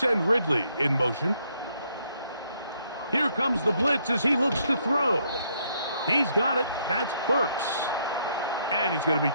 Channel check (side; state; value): both; inverted; correlation -0.72